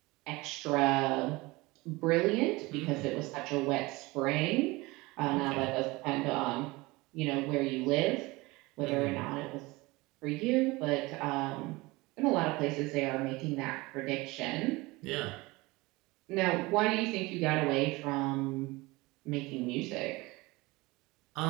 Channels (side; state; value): left; quieter; 22.4 dB